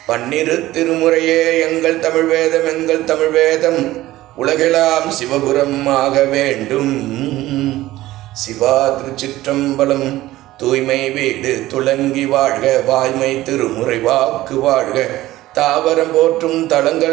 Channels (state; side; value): quieter; left; 16.3 dB